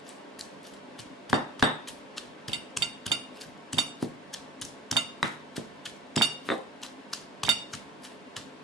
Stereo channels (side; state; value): both; normal; correlation 0.41